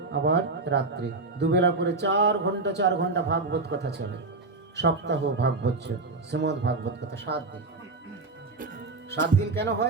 আবার রাত্রে, দুবেলা করে 4 ঘন্টা ভাগবত কথা চলে। সপ্তাহ ভাগবত, শ্রীমদ ভাগবত কথা 7 দিন। 7 দিন কেন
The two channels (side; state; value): left; quieter; 3.6 dB